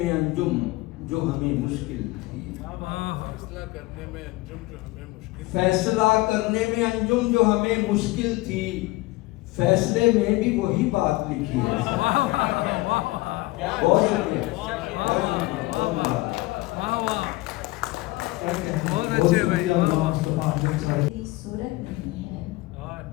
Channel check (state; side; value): quieter; right; 20.4 dB